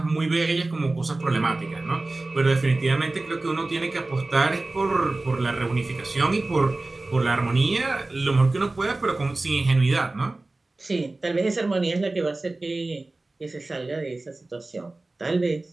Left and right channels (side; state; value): left; quieter; 3.1 dB